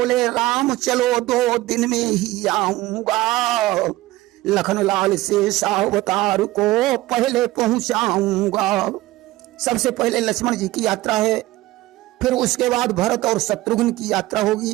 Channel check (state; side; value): quieter; left; 17.7 dB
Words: राम, चलो 2 दिन में ही आऊंगा, लखनलाल से सावतार को पहले पहुंचाऊंगा। सबसे पहले लक्ष्मण जी की यात्रा है, फिर उसके बाद भरत और शत्रुघ्न की यात्रा